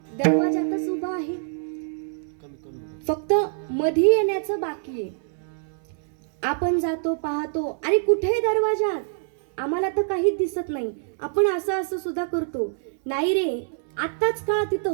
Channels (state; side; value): silent; left; 62 dB below the other